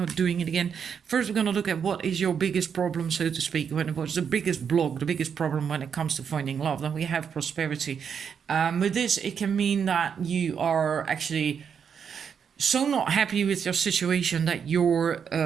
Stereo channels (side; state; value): left; quieter; 7.2 dB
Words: doing it again. First, we're going to look at what is your biggest problem, so to speak. What's the biggest block, the biggest problem when it comes to finding love? Then we have prosperity. With this, it can mean that you are actually so not happy with your situation that you're